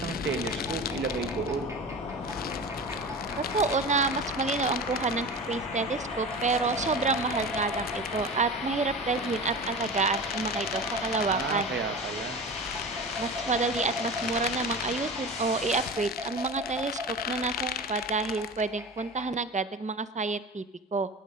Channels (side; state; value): both; normal; correlation 0.32